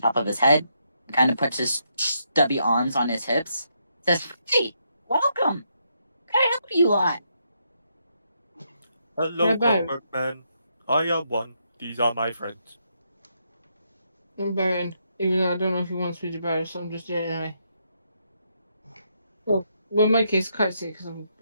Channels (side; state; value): both; inverted; correlation -0.78